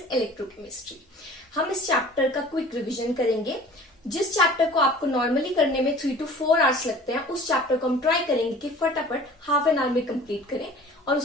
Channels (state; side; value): normal; both; correlation 0.45